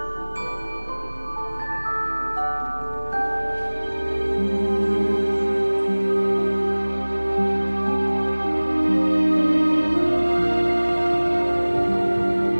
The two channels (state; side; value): inverted; both; correlation -1.00